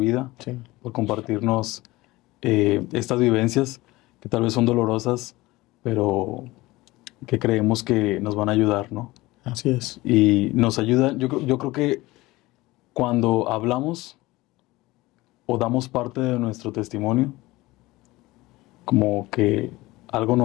Sí. por compartirnos estas vivencias que tal vez son dolorosas, pero que creemos que nos van a ayudar, ¿no? Así es. Y nos ayuda, yo creo que cuando hablamos o damos parte de nuestro testimonio, como que algo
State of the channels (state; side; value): quieter; right; 19.8 dB